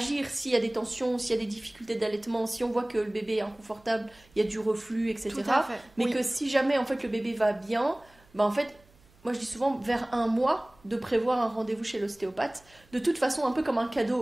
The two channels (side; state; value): right; noise; hum, 29 dB below the sound